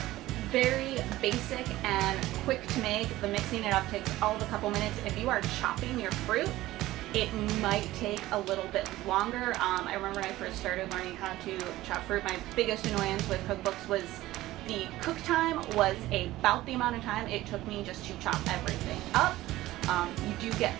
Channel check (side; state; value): left; quieter; 16.5 dB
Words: very basic and quick to make, the mixing it up takes all of a couple minutes. If you are chopping your fruit, it might take a little bit longer. I remember when I first started learning how to chop fruit, my biggest annoyance with cookbooks was the cook time was about the amount of time it took me just to chop everything up. You do get